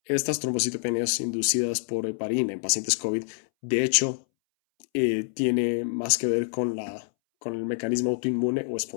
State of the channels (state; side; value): silent; right; 61 dB below the other